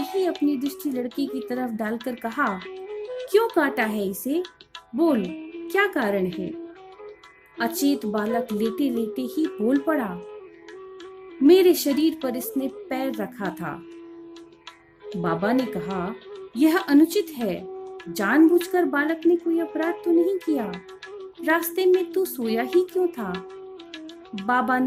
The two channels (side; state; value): both; identical; correlation 1.00